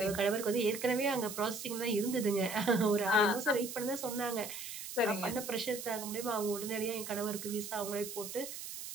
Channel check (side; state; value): right; noise; hiss, 8 dB below the sound